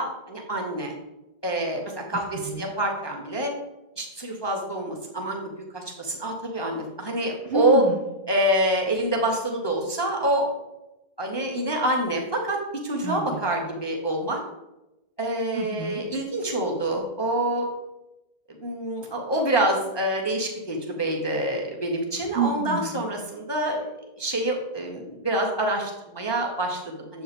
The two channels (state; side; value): late; right; 1.2 ms